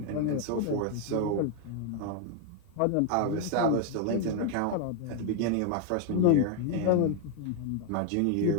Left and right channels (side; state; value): both; different; correlation 0.01